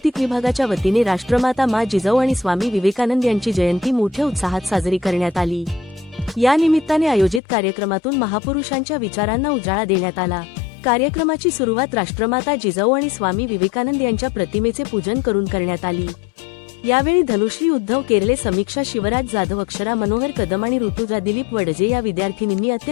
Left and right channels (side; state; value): right; drops out; at 7.4 s